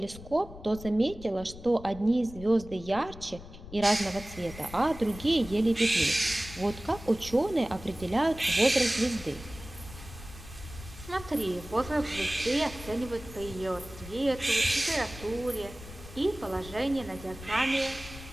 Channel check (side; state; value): left; noise; rumble, 15 dB below the sound